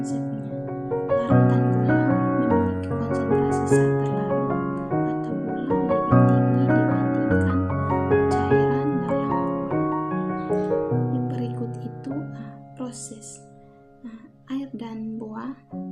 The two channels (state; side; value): identical; both; correlation 1.00